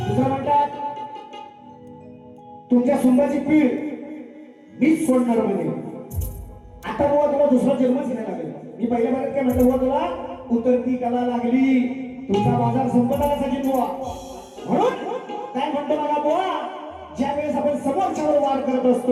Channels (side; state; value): both; identical; correlation 1.00